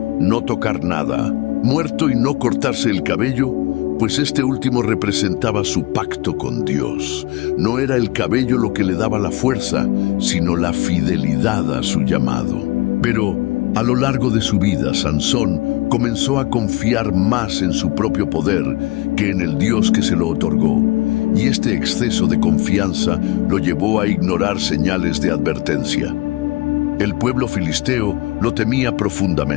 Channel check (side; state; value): right; quieter; 21.2 dB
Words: no tocar nada, muerto y no cortarse el cabello, pues este último representaba su pacto con Dios. No era el cabello lo que le daba la fuerza, sino la fidelidad a su llamado. Pero a lo largo de su vida, Sansón comenzó a confiar más en su propio poder que en el Dios que se lo otorgó, y este exceso de confianza lo llevó a ignorar señales de advertencia. El pueblo filisteo lo temía